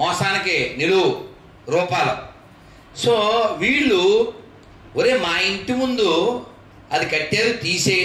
మోసానికి నిలువు రూపాలు. సో వీళ్ళు ఒరే మా ఇంటి ముందు అది కట్టారు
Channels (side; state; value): both; identical; correlation 1.00